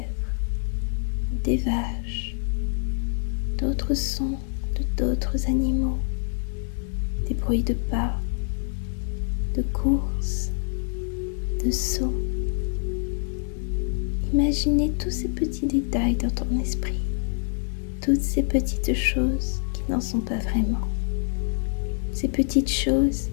des vaches, d'autres sons de d'autres animaux, des bruits de pas, de courses, de sauts. Imaginez tous ces petits détails dans ton esprit, toutes ces petites choses qui n'en sont pas vraiment, ces petites choses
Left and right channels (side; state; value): right; silent; 61 dB below the other